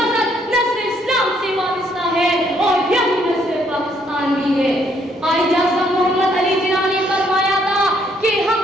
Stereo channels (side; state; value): both; normal; correlation 0.69